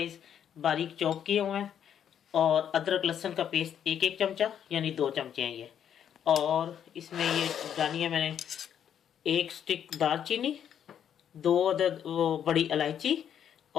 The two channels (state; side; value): quieter; right; 9.1 dB